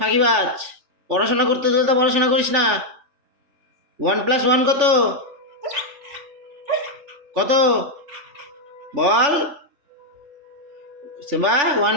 পড়াশোনা করতে দিলে তো পড়াশোনা করিস না। 1+1 কত? কত বল সেবা,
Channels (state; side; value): late; left; 3.5 ms